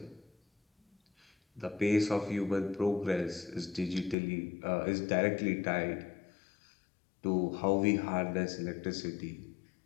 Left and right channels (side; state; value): right; drops out; at 4.2 s